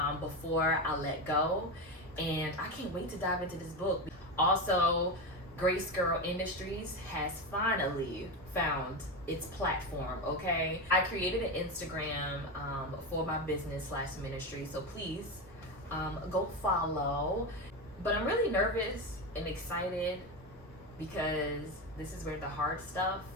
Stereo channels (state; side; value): normal; both; correlation 0.16